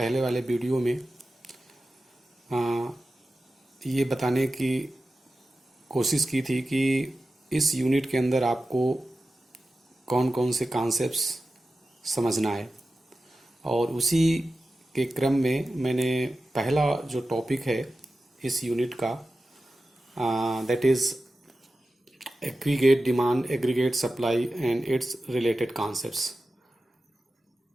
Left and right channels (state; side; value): normal; both; correlation 0.93